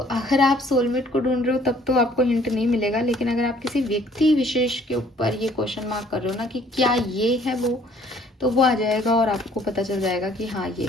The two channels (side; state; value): both; normal; correlation 0.58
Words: अगर आप सोलमेट को ढूंढ रहे हो तब तो आपको हिंट नहीं मिलेगा, लेकिन अगर आप किसी व्यक्ति विशेष के ऊपर ये क्वेश्चन मार्क कर रहे हो ना कि क्या ये है वो, तो वो आ जाएगा और आपको पता चल जाएगा कि हाँ ये